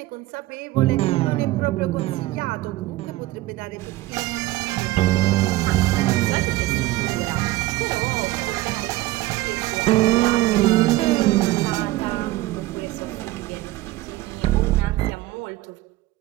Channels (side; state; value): left; quieter; 17.5 dB